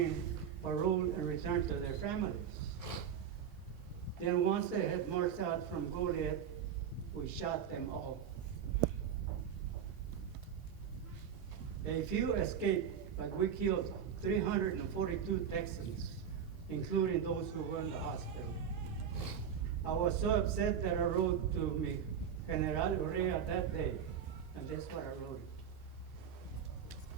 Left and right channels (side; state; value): left; quieter; 8.0 dB